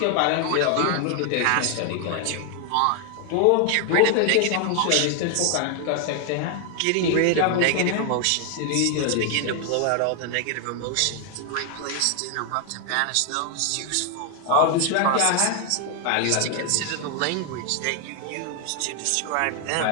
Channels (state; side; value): different; both; correlation 0.00